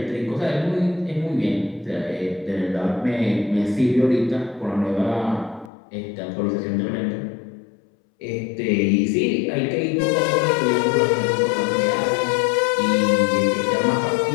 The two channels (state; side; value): drops out; right; at 5.7 s